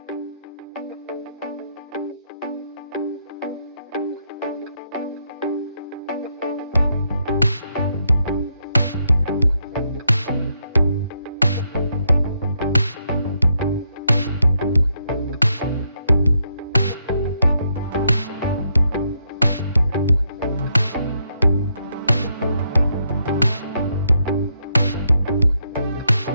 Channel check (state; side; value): inverted; both; correlation -0.78